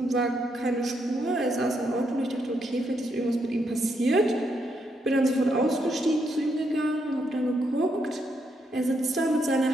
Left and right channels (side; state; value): both; normal; correlation 0.78